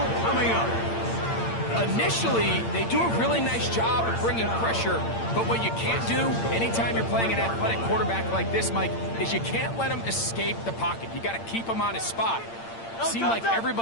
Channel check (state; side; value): late; right; 8.8 ms